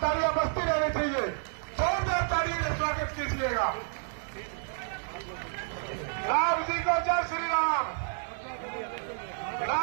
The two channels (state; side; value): silent; left; digital silence